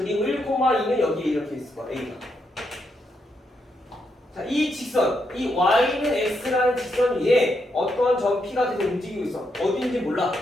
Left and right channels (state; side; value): normal; both; correlation 0.80